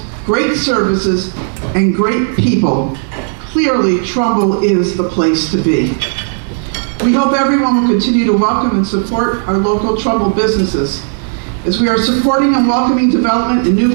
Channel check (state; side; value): silent; left; digital silence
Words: great services, and great people. Clearly, Trumbull is the place to be. We hope everyone will continue to welcome and support our local Trumbull businesses. As we are supporting and welcoming development and new